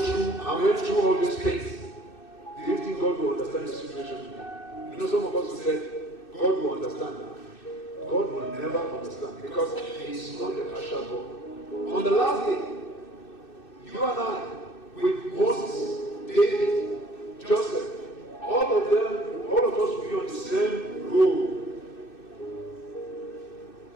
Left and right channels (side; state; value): right; late; 2.6 ms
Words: and went through all these things, do you think God will understand the situation today? You know, some of us who said, God will understand. God will never understand because He is not a partial God. On the last day, you and I, with Moses, David, Joseph, all of them, all of us will be on the same road.